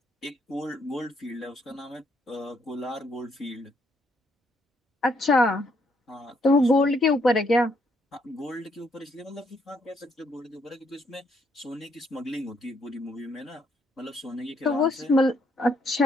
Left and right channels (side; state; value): both; normal; correlation 0.72